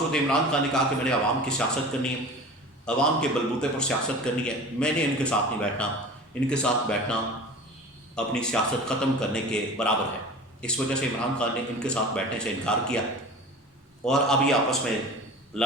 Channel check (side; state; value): both; normal; correlation 0.37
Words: عمران خان نے کہا کہ میں نے عوام کی سیاست کرنی ہے، عوام کے بلبوتے پر سیاست کرنی ہے، میں نے ان کے ساتھ نہیں بیٹھنا، ان کے ساتھ بیٹھنا اپنی سیاست ختم کرنے کے برابر ہے۔ اس وجہ سے عمران خان نے ان کے ساتھ بیٹھنے سے انکار کیا، اور اب یہ آپس میں